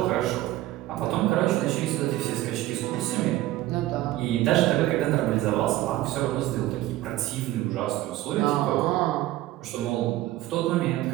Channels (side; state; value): left; quieter; 15.8 dB